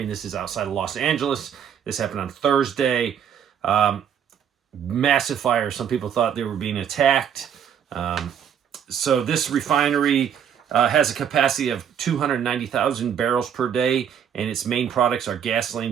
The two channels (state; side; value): quieter; left; 8.4 dB